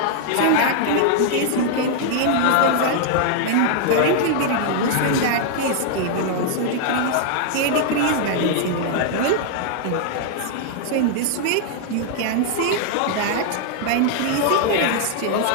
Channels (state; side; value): different; both; correlation -0.01